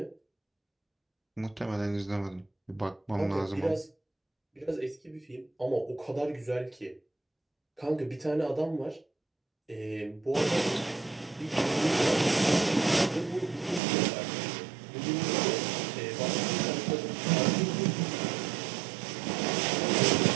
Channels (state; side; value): drops out; left; at 13.8 s